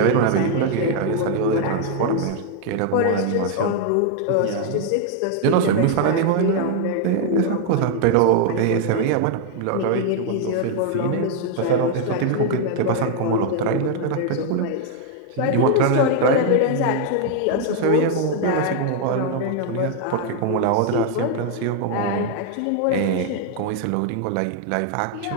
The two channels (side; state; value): both; different; correlation 0.00